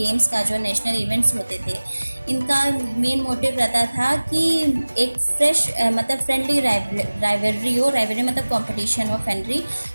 का जो national events होते थे, इनका main motive रहता था कि एक फ्रेश मतलब फ्रेंडली राइवलरी हो. राइवलरी मतलब कंपटीशन हो, फ्रेंडली,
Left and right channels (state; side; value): inverted; both; correlation -1.00